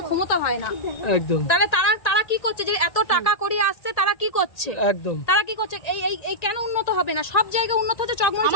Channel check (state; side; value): late; right; 1.8 ms